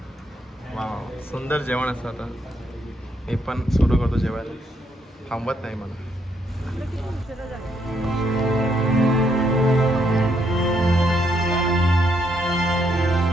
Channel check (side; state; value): both; normal; correlation 0.74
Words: वाव सुंदर जेवण असतं. आता मी पण सुरू करतो जेवायला. थांबत नाही मला.